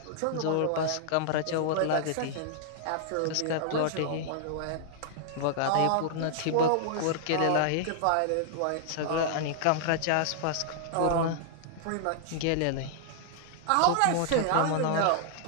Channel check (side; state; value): both; different; correlation -0.01